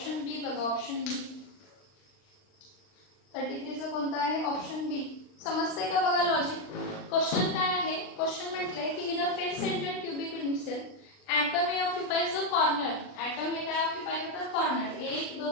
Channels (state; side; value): late; right; 39 ms